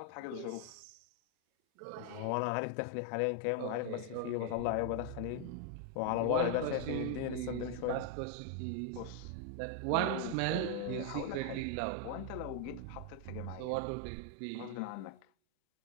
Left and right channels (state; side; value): different; both; correlation 0.00